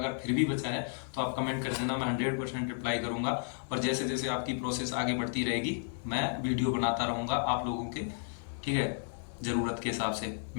फिर भी बचा है तो आप कमेंट कर देना, मैं 100% रिप्लाई करूंगा। और जैसे जैसे आपकी प्रोसेस आगे बढ़ती रहेगी मैं वीडियो बनाता रहूंगा आप लोगों के, ठीक है, जरूरत के हिसाब से।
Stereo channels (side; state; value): right; silent; digital silence